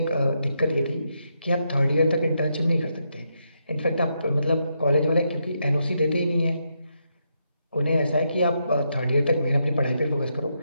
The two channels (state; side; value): inverted; both; correlation -0.81